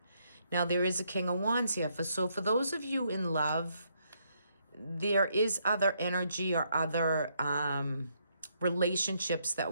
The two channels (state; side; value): inverted; both; correlation -0.74